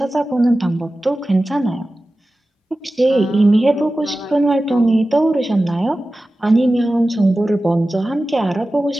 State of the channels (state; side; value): normal; both; correlation 0.95